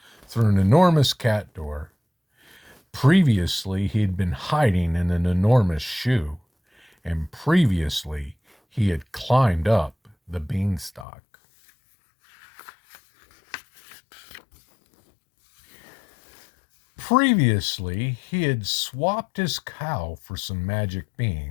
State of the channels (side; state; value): right; drops out; at 11.1 s